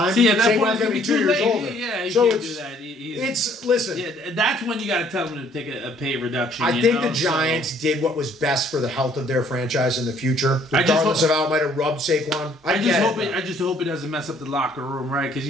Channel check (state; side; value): normal; both; correlation 0.61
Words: Saquon's going to be 2 years older. Yeah, you so can't do that. Listen. Yeah, that's when you got to tell them to take a pay reduction. I think the Giants did what was best for the health of their franchise in the future, regardless of how it might have rubbed Saquon. I just hope it doesn't mess up the locker room, right? Because